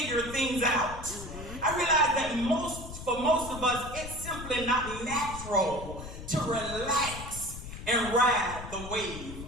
things out. I realize that for most of us, it's simply not natural to relax and ride the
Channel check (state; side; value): noise; left; rumble, 11 dB below the sound